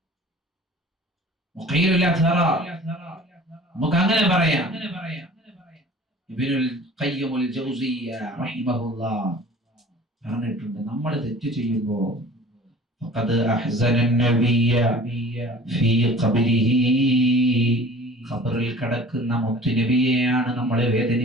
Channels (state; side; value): normal; both; correlation 0.45